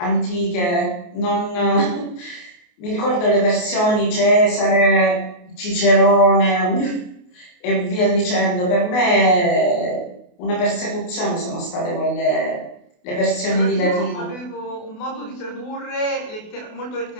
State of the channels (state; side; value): late; right; 28 ms